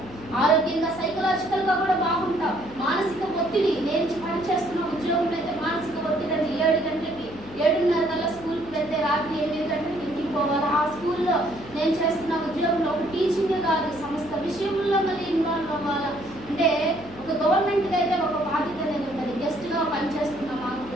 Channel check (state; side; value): noise; left; hum, 17 dB below the sound